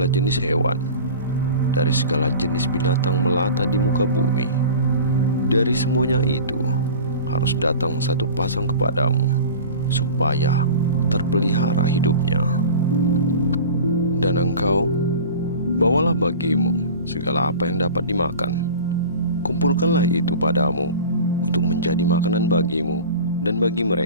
jenis hewan, dari segala jenis binatang melata di muka bumi, dari semuanya itu harus datang satu pasang kepadamu, supaya terpelihara hidupnya. Dan engkau bawalah bagimu segala apa yang dapat dimakan. Kumpulkanlah itu padamu untuk menjadi makanan bagimu dan bagi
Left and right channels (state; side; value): inverted; both; correlation -0.36